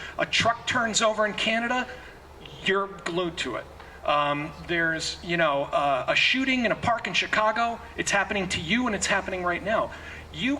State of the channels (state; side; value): identical; both; correlation 1.00